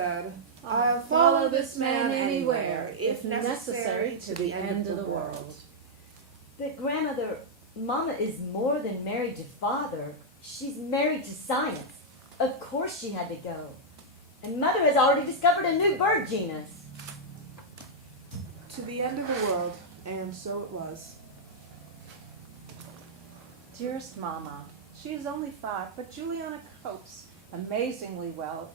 I'll follow this man anywhere, if necessary, to the end of the world. But grandmother, Mama is more than married to Father. She's married to science. Of course she had to go. And Mother has already discovered a new bird genus. To the end of the world, and so it was. Dearest Mama, she is only 5, but Juliana copes amazingly well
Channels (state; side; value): normal; both; correlation -0.06